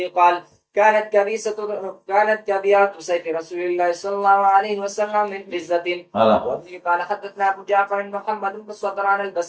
قال كانت كبيعة سيف رسول الله صلى الله عليه وسلم من فزة. وبه قال حدثنا أبو جعفر محمد بن صدران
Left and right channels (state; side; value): identical; both; correlation 1.00